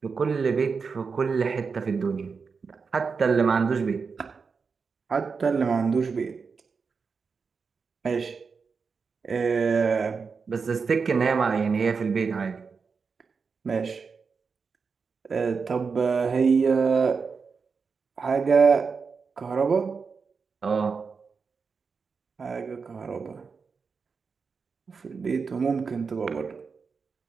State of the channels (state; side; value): quieter; left; 5.2 dB